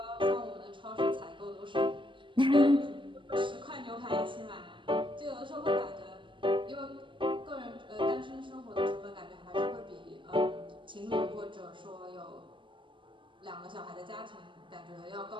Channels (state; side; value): late; left; 0.24 ms